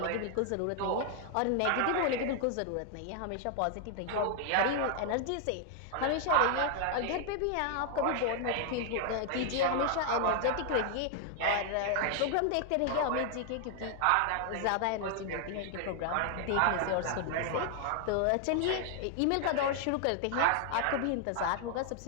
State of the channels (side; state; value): both; different; correlation 0.00